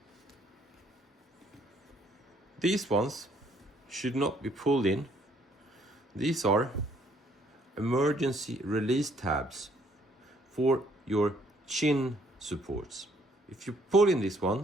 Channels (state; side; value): normal; both; correlation 0.65